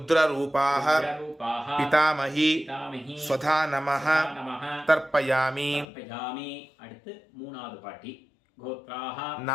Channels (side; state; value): right; drops out; at 5.9 s